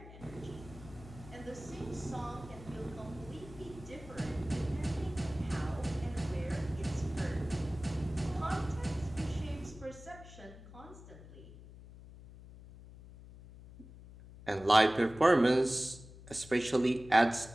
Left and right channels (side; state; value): left; noise; hum, 17 dB below the sound